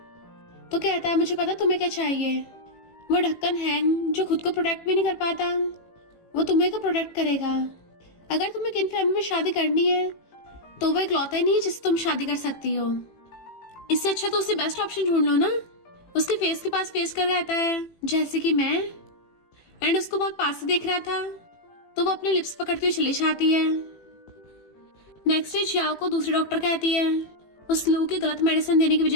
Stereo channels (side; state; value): right; late; 18 ms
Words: तो कहता है मुझे पता तुम्हें क्या चाहिए। वो ढक्कन हैंग जो खुद को प्रोटेक्ट भी नहीं कर पाता, वो तुम्हें को प्रोटेक्ट करेगा। अगर तुम्हें किन फैमिली में शादी करनी है तो वो इकलौता ही नहीं है जिससे तुम शादी कर सकती हो। इससे अच्छा तो उसे बेस्ट ऑप्शन ढूंढ लो ना। उसके फेस के पास फेस कर रहता है जैसे कि मैं, एंड उसको बहुत पास से देख रहा था, तो वो अपने लिप्स पकड़ती हुई चली जाती है। नेक्स्ट डे जियाओ को दूसरी डॉक्टर कहती है उस लू की गलत मेडिसिन देने की